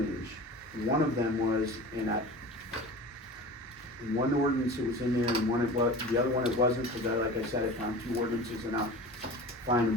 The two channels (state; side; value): normal; both; correlation 0.36